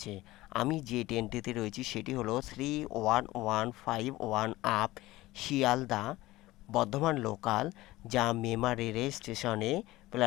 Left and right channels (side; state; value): right; quieter; 18.1 dB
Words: আমি যে ট্রেনটিতে রয়েছি সেটি হলো 31151 আপ শিয়ালদা বর্ধমান লোকাল, যা মেমারি রেল স্টেশনে